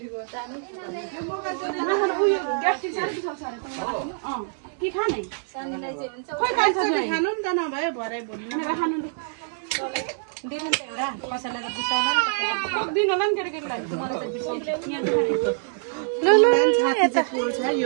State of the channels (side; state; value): left; silent; digital silence